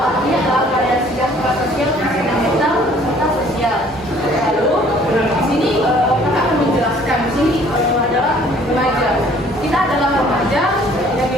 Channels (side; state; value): both; normal; correlation 0.56